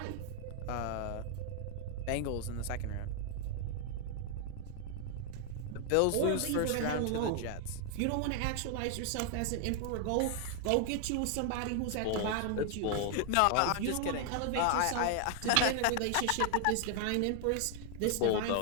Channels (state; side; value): different; both; correlation 0.00